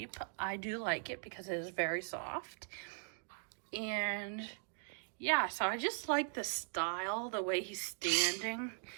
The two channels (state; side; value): silent; left; 51 dB below the other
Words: I do like it because it is very soft. And yeah, so I just like the style, the way he's standing.